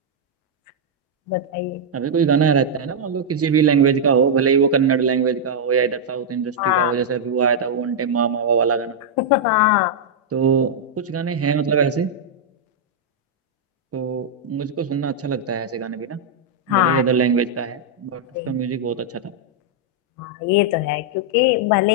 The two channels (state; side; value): normal; both; correlation -0.05